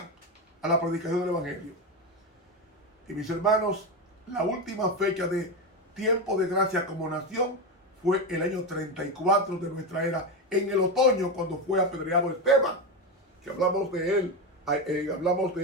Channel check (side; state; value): both; normal; correlation 0.15